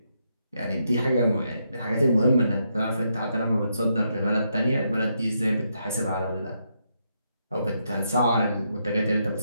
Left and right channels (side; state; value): both; inverted; correlation -0.80